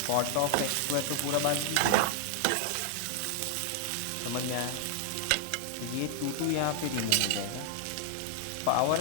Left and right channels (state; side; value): different; both; correlation 0.00